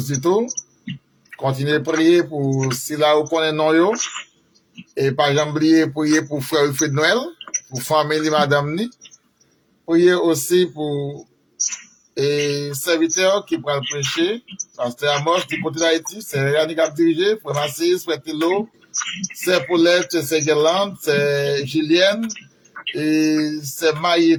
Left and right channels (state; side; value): identical; both; correlation 1.00